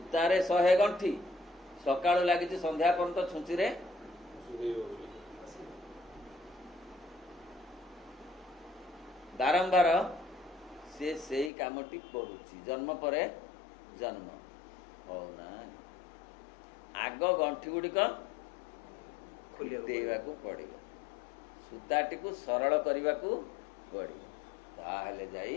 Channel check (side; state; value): right; drops out; at 11.5 s